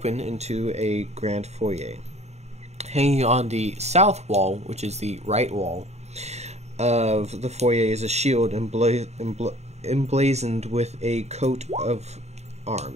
into a grand foyer. Hanging on the south wall, which is the right wall of the foyer, is a shield emblazoned with a coat of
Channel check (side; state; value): left; late; 0.32 ms